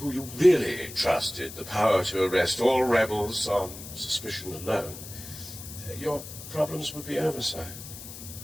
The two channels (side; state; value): left; noise; hiss, 13 dB below the sound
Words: you really trusted the power to arrest all rebels on suspicion alone. Your problems would be over, sire.